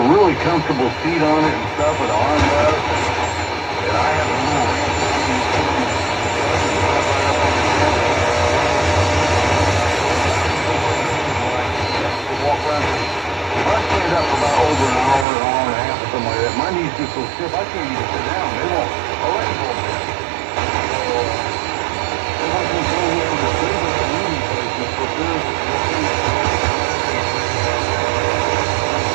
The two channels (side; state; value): left; drops out; at 15.2 s